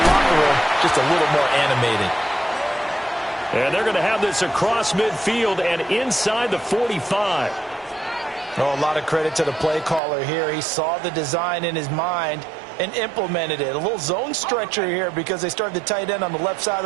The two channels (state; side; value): drops out; left; at 10.0 s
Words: locker room just a little more animated. And they're going to have this across midfield and inside the 45. Oh, a lot of credit to the play caller here. He saw the design in his mind and implemented it. A little zone stretcher here because they started the tight end on the left side